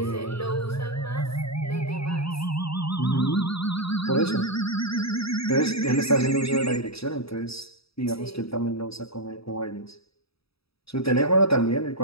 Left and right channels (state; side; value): late; right; 0.77 ms